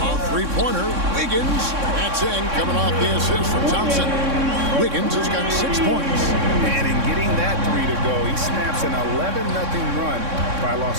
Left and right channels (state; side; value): late; left; 3.6 ms